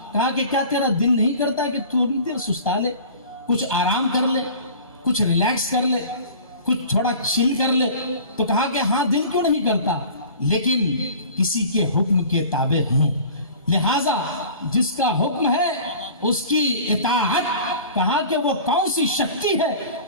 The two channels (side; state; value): both; inverted; correlation -0.42